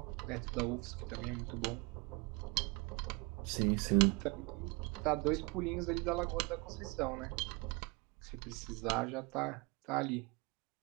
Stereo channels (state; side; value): quieter; left; 28.4 dB